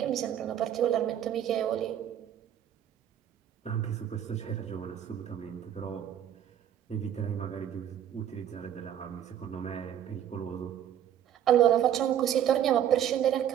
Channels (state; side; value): quieter; left; 10.3 dB